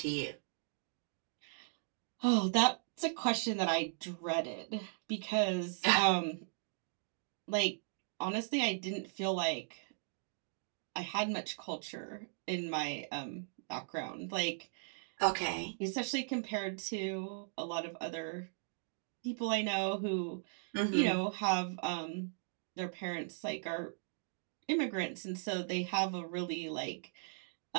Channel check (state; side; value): silent; left; digital silence